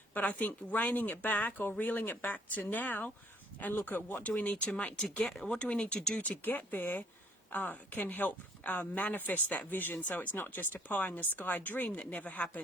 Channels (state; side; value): normal; both; correlation 0.62